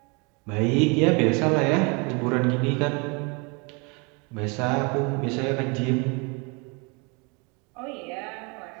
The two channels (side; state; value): left; quieter; 31.2 dB